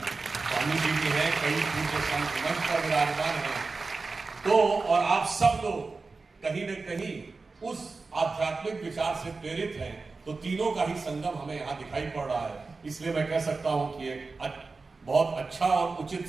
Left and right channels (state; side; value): quieter; left; 4.0 dB